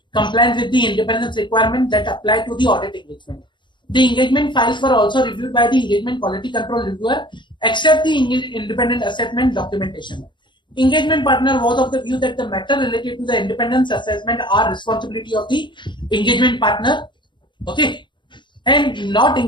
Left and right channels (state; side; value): late; right; 0.23 ms